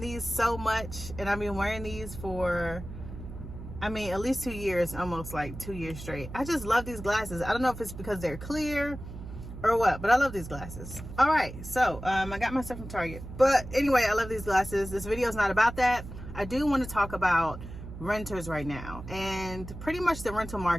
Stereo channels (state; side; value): noise; right; hum, 11 dB below the sound